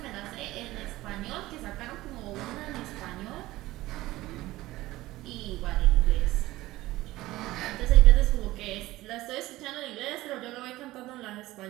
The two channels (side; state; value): left; quieter; 17.5 dB